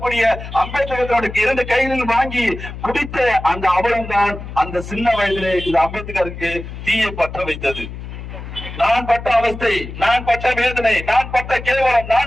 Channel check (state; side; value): noise; left; hum, 10 dB below the sound